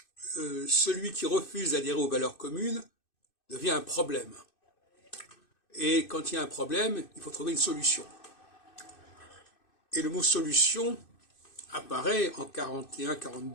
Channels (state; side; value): late; right; 2.6 ms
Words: celui qui refuse d'adhérer aux valeurs communes devient un problème. Et quand il y a un problème, il faut trouver une solution. Et le mot solution apparaît en